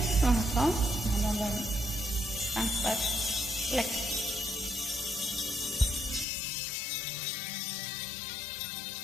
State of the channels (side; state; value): right; drops out; at 6.2 s